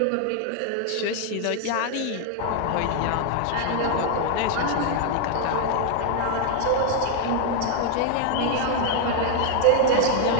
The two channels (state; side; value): different; both; correlation 0.00